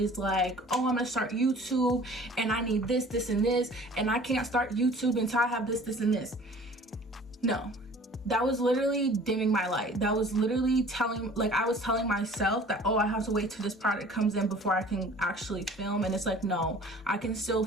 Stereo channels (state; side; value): normal; both; correlation 0.48